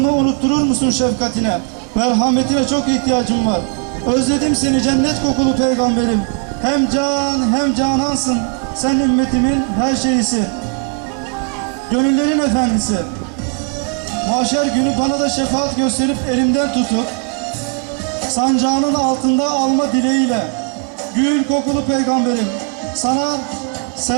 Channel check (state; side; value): quieter; left; 36.9 dB